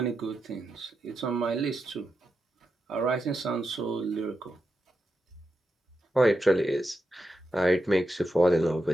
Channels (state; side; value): normal; both; correlation 0.87